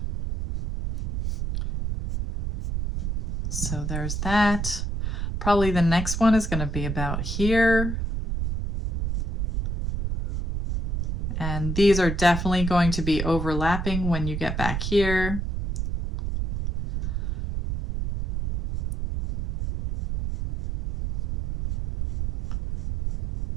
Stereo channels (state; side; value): noise; right; rumble, 3 dB below the sound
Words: So there's that. Probably the next one is going to be about here. And these are definitely going to be overlapping when you get back here.